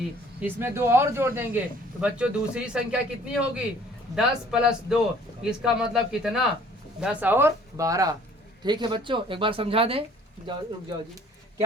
इसमें 2 और जोड़ देंगे तो बच्चों दूसरी संख्या कितनी होगी? 10 प्लस 2, इसका मतलब कितना? 10 और 12। ठीक है बच्चों, एक बार समझा दें। रुक जाओ जी,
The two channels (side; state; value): both; normal; correlation 0.55